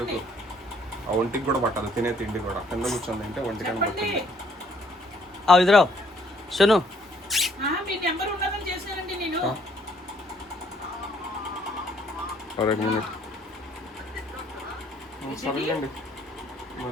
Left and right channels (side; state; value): both; normal; correlation 0.64